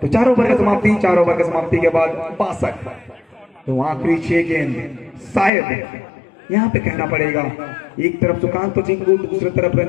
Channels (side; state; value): right; drops out; at 5.5 s